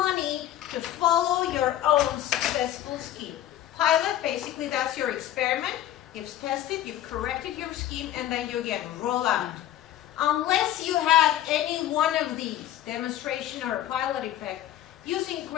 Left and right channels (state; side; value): quieter; right; 12.6 dB